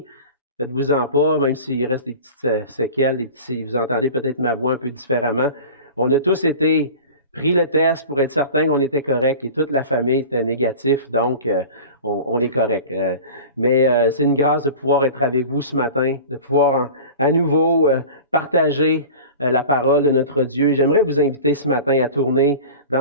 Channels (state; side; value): inverted; both; correlation -0.37